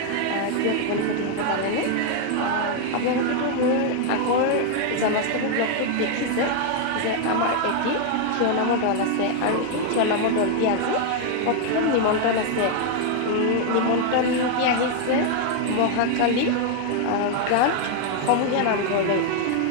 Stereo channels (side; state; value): both; different; correlation 0.00